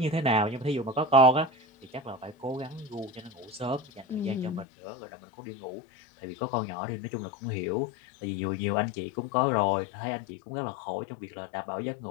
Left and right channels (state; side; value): drops out; right; at 4.7 s